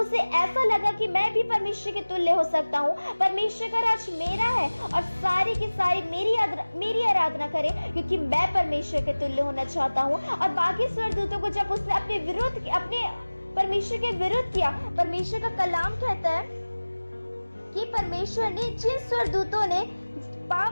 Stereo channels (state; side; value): inverted; both; correlation -1.00